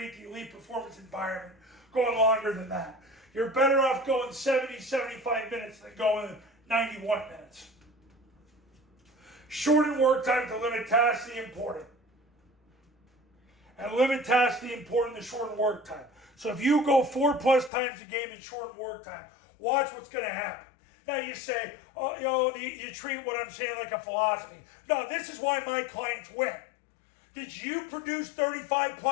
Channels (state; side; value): drops out; right; at 17.7 s